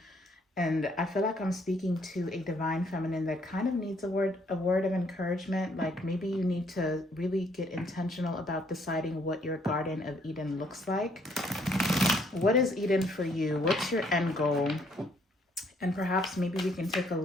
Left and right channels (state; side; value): normal; both; correlation 0.67